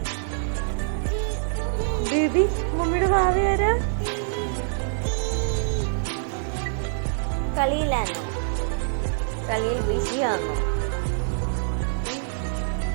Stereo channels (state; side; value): silent; left; digital silence